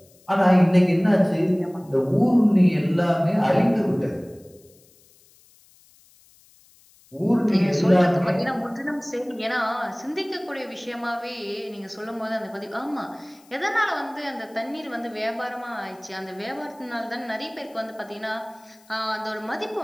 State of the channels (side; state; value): left; noise; hiss, 29 dB below the sound